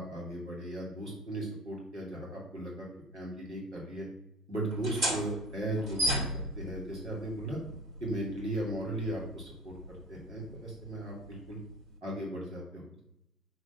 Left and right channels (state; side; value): normal; both; correlation 0.37